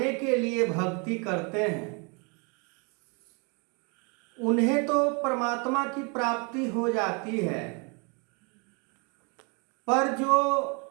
के लिए भक्ति करते हैं उन्हें तो परमात्मा की प्राप्ति हो जाती है, पर जो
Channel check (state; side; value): quieter; left; 33.6 dB